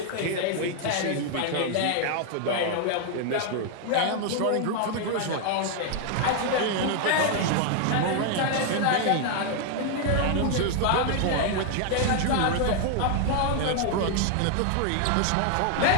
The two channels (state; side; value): different; both; correlation 0.00